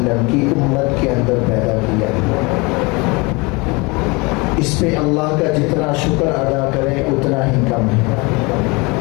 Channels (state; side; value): quieter; right; 26.7 dB